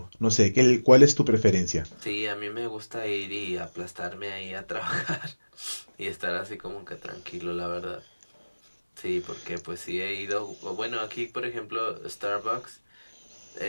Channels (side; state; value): both; inverted; correlation -1.00